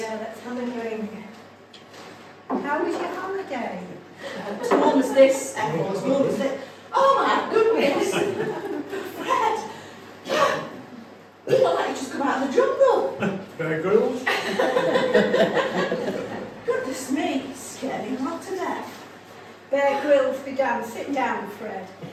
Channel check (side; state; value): both; identical; correlation 1.00